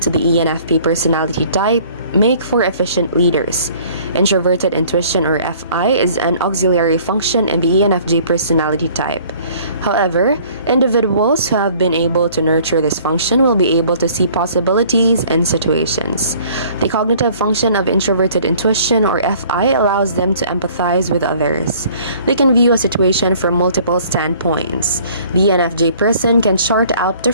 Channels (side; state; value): both; inverted; correlation -0.54